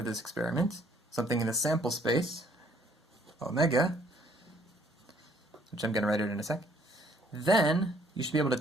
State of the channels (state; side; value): normal; both; correlation 0.63